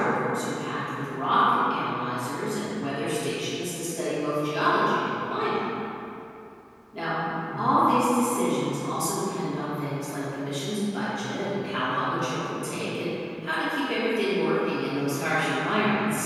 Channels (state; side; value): identical; both; correlation 1.00